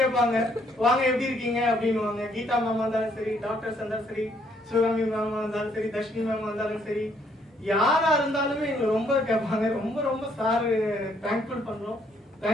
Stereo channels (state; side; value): normal; both; correlation 0.68